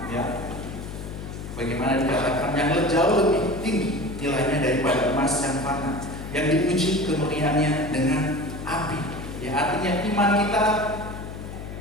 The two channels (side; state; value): left; noise; hum, 9 dB below the sound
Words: ya. Bagaimana dikatakan yang jauh lebih tinggi nilainya daripada emas yang fana, yang diuji kemurniannya dengan api. Ya, artinya iman kita